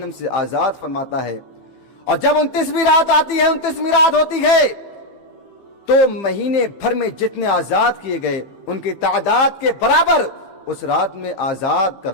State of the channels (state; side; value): late; right; 15 ms